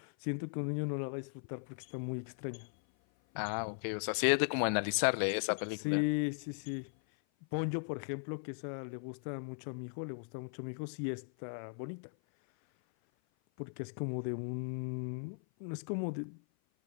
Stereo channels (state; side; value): silent; right; 53 dB below the other